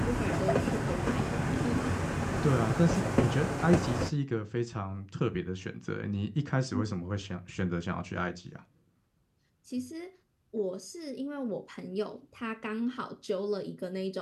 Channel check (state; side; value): identical; both; correlation 1.00